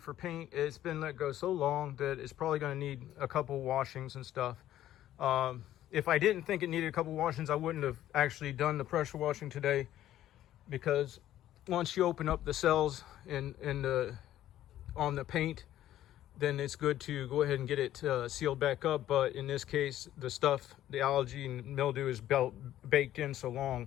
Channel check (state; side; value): quieter; right; 12.8 dB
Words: paint. It's been let go so long that it's probably going to need a couple washings and stuff. If I didn't think it needed a couple washings, I wouldn't have actually done the pressure washing today, because once you open up the cells on the paint, then it's good to go ahead and get it sealed back up. But in this case, the algae and mildew is baked in so